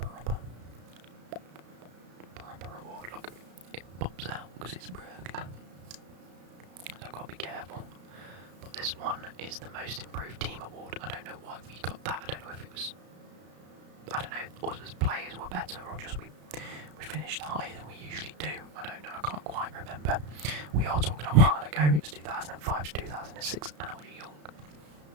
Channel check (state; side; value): late; left; 33 ms